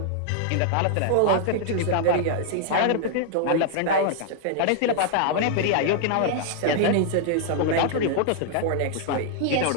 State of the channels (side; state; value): both; different; correlation -0.01